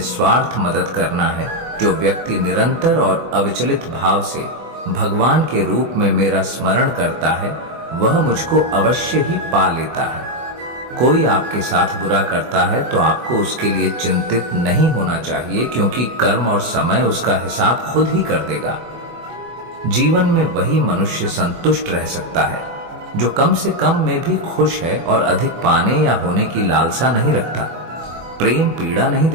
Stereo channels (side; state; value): left; late; 24 ms